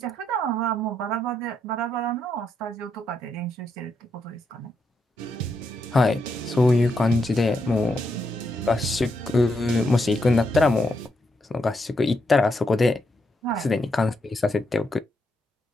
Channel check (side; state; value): both; normal; correlation 0.80